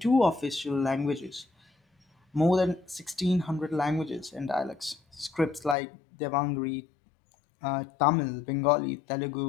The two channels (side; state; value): right; drops out; at 5.8 s